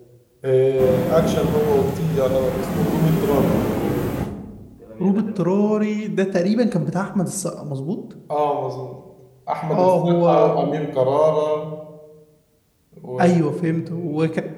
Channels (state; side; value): identical; both; correlation 1.00